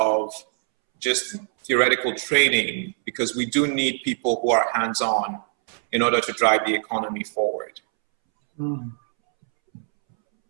just theoretical training, because we do need people who are hands-on in order to drive the economy forward. Mm.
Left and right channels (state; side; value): silent; left; 63 dB below the other